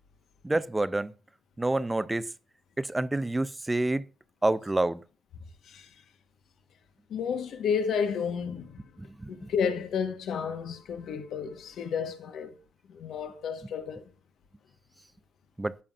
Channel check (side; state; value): both; normal; correlation 0.82